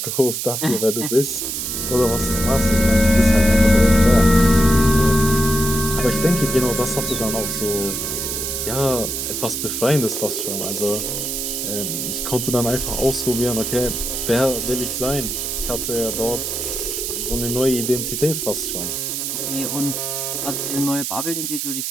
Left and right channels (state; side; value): noise; right; hiss, 3 dB below the sound